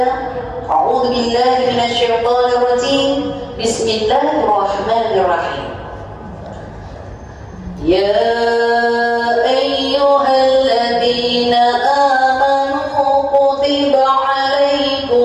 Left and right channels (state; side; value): identical; both; correlation 1.00